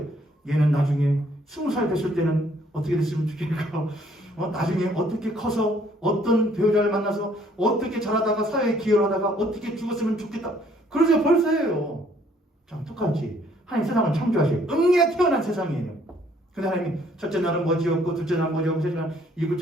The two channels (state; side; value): normal; both; correlation 0.63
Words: 얘는 나중에 20살 됐을 때는 어떻게 됐으면 좋겠고, 나중에 어떻게 커서 어떤 배우자를 만나서 어떻게 자라다가 사회에 기여를 하다가 어떻게 죽었으면 좋겠다. 그러세요. 벌써 해요. 참 똑같이 하나님 세상을 창조하셔요. 응애 태어난 세상이에요. 근데 하나님이 첫째 날은 뭐 지었고 둘째 날은 뭐 지었고 셋째 날